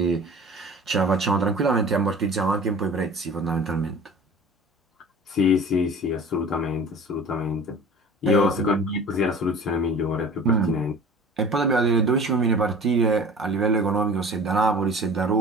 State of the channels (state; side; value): normal; both; correlation 0.41